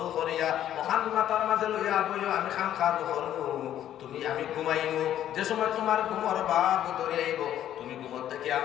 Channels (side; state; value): right; quieter; 11.4 dB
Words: করিয়া ওখান মাতার মাঝে লইয়া বইও আমি খাম খাদু করবো তুমি আমি ঘুমাইব যে সময় তোমার ঘুমর বাপ ধরে আইব তুমি ঘুমর থেকে